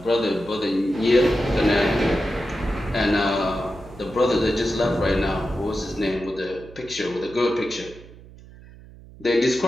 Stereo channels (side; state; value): right; noise; hum, 20 dB below the sound